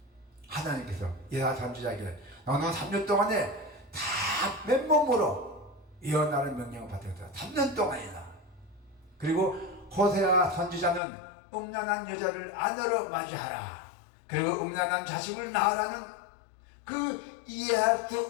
하나님께서 이사야 선지자에게 너는 3년 동안에 다 맨몸으로 예언하는 명령을 받았어요. 3년 동안이나. 그리고 호세아 선지자는 음란한 여자를 아내로 맞이하라, 그리고 음란한 자식을 낳으라는 그 이해할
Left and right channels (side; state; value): right; drops out; at 11.0 s